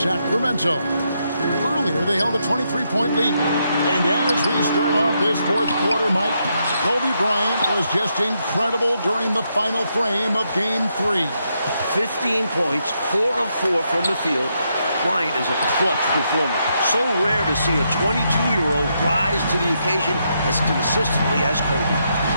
Earlier, they held a 23-point lead. And as we start off this fourth quarter, Mike, Kobe Bryant was just incredible during the final frame of Game 3. 15 points, 4 of 4 from the field. Bryant is a clutch performer. So rare to see a 22-year-old rise to the occasion as consistently as Kobe.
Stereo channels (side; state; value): both; inverted; correlation -0.79